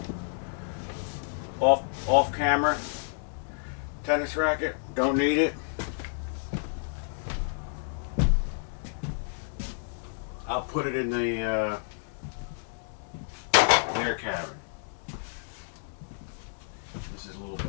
Off camera. Tennis racket, don't need it. I'll put it in the air cabin. This is a little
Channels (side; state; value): right; silent; digital silence